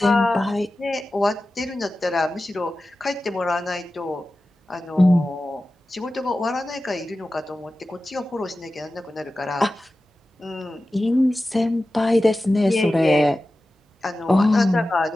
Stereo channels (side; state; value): both; normal; correlation 0.94